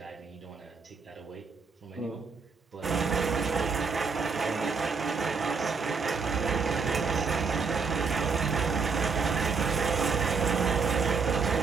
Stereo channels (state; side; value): quieter; left; 5.0 dB